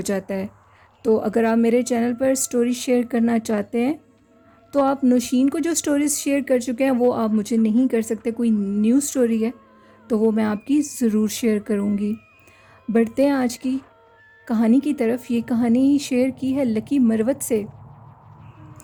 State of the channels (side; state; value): both; identical; correlation 1.00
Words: جاتا ہے۔ تو اگر آپ میرے چینل پر سٹوری شیئر کرنا چاہتے ہیں تو آپ نوشین کو جو سٹوریز شیئر کر چکے ہیں وہ آپ مجھے نہیں کر سکتے۔ کوئی نیو سٹوری ہے تو وہ میں آپ کی ضرور شیئر کروں گی۔ بڑھتے ہیں آج کی کہانی کی طرف۔ یہ کہانی شیئر کی ہے لکی مروت سے،